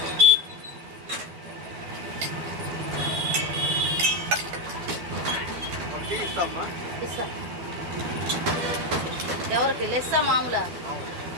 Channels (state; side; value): late; left; 12 ms